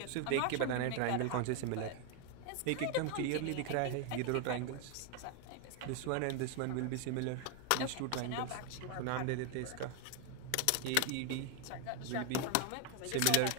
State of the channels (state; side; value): different; both; correlation 0.01